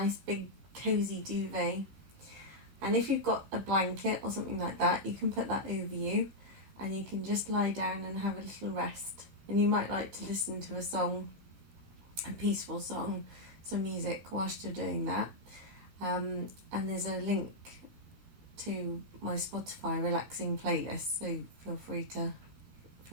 big cozy duvet. And if you've got a blanket or something like that, you can put that over you and you can just lie down and have a little rest. And you might like to listen to a song, a peaceful song, some music whilst you're doing that. And there's a link to my Spotify relaxing playlist, so feel free to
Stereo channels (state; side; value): late; left; 15 ms